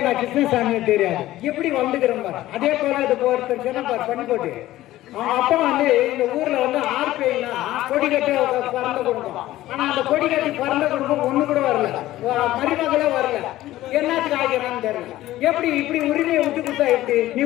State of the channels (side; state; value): right; quieter; 15.3 dB